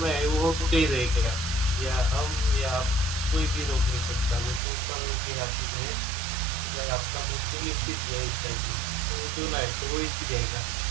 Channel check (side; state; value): left; drops out; at 4.6 s